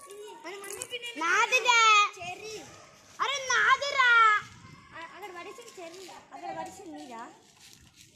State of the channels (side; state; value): both; identical; correlation 1.00